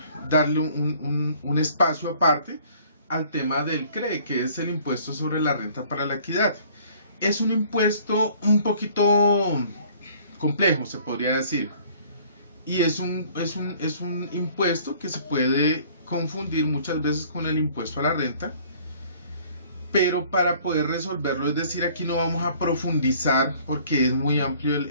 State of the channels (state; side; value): inverted; both; correlation -0.55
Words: darle un espacio aparte al tema del CRE, que es el impuesto sobre la renta para la equidad. Es un impuesto un poquito complejo, se podría decir, y es un impuesto que se puede confundir muchas veces con el impuesto a la renta, pero para poder resolverlo, es decir, aquí no vamos a profundizar porque es muy amplio